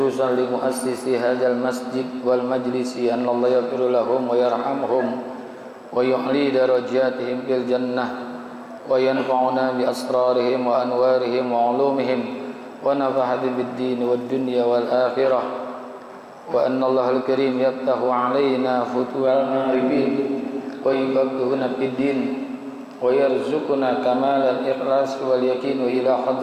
li muassisi hadzal masjid wal majlisi, an Allah yaghfir lahum wa yarhamhum wa yu'li darajatihim fil jannah wa yanfa'una bi asrarihim wa anwarihim wa ulumihim wa nafa'ana bid din wad dunya wal akhirah, wa anna Allah al-karim yaftahu alaina futuhal arifin wa yufaqqihuna fid din wa yarzuquna kamal al-ikhlas wal yakin ila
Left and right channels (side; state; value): both; identical; correlation 1.00